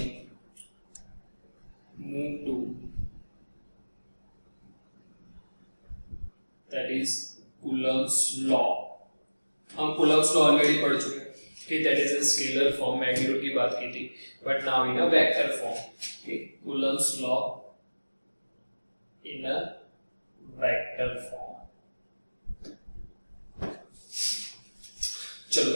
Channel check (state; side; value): inverted; both; correlation -1.00